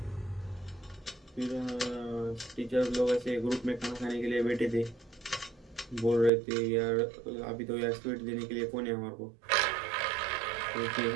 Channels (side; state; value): left; drops out; at 6.3 s